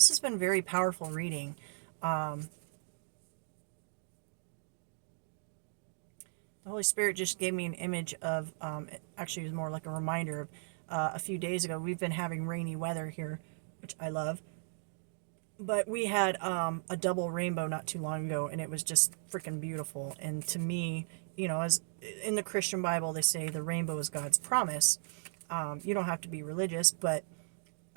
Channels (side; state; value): left; silent; digital silence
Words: has been very powerful reading. The Holy Spirit just gave me an image of, actually it was more like a reminder of a few days ago. We've been having rainy weather here, which I love. But we had a double rainbow not too long ago, and it was just freaking beautiful. And to me, as in the Christian Bible, they say the rainbow is God's promise. You don't have to be religious, but